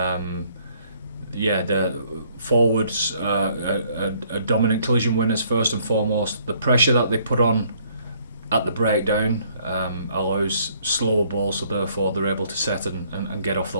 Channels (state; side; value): inverted; both; correlation -0.64